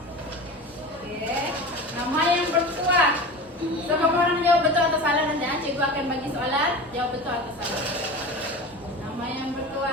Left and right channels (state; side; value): normal; both; correlation 0.32